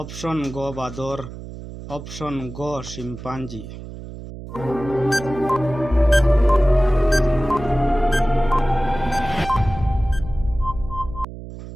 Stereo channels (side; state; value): right; noise; hum, 12 dB below the sound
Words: অপশন গ বাঁদর, অপশন গ শিম্পাঞ্জি।